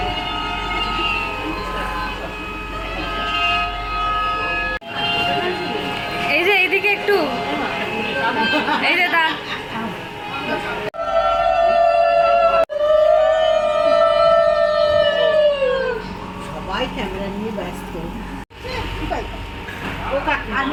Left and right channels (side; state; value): both; identical; correlation 1.00